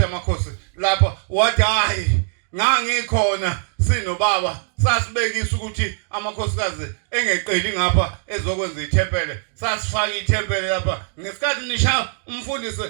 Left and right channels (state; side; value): silent; left; digital silence